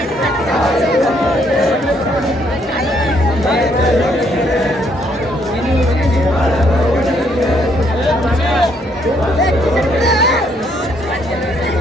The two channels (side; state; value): both; normal; correlation 0.70